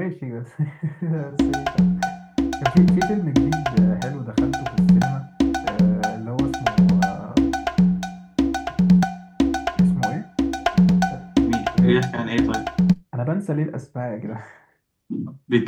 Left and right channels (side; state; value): both; identical; correlation 1.00